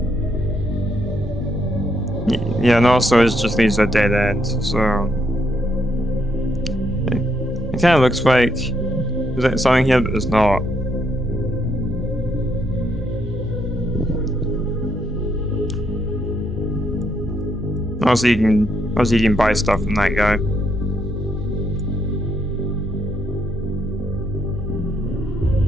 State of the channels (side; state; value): both; normal; correlation 0.75